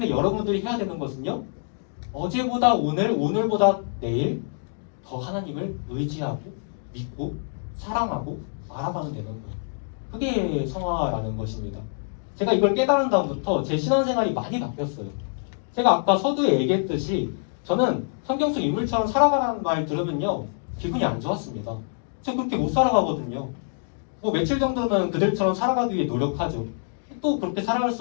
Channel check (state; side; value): silent; right; digital silence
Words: 여러분들이 해야 되는 것은요, 어제보다 오늘, 오늘보다 내일 더 하나님을 의지하고 믿고 사랑하고 알아가면 되는 거예요. 그게 성화라는 것입니다. 제가 이걸 깨달은 다음부터 제 신앙생활이 많이 바뀌었어요. 제가 아까 서두에 얘기했듯이 저는 성경 속 인물처럼 살아가라는 말 들으면요 기분이 안 좋았습니다. 저 그렇게 못 살아가거든요. 뭐 며칠 정도는 그들처럼 살아가기 위해 노력하죠. 또 그렇게 살아갈